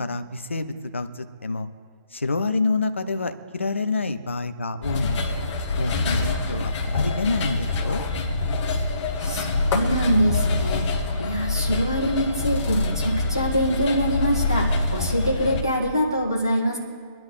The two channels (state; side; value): inverted; both; correlation -0.71